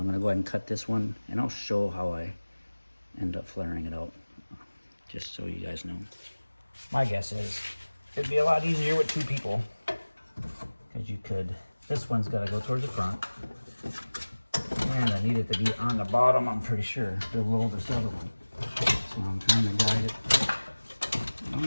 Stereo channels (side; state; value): both; inverted; correlation -1.00